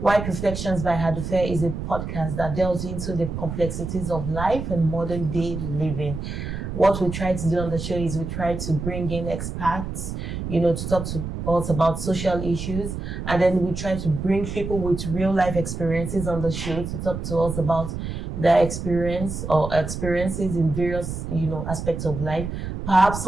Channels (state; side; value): noise; right; rumble, 6 dB below the sound